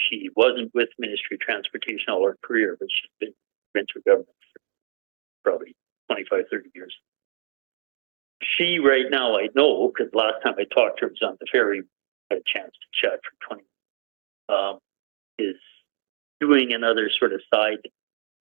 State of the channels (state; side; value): silent; left; digital silence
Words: wasn't with Ministry of Transportation all her career, but she's been provincial government for probably 25, 30 years. She right now, I know, because last time I talked to her was on the ferry, had a chance to chat for 20 is doing another sort of side